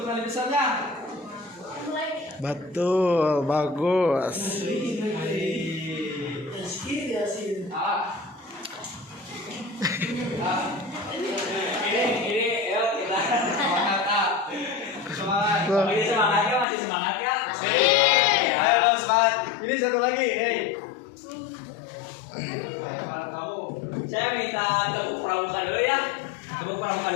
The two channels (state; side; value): drops out; right; at 16.7 s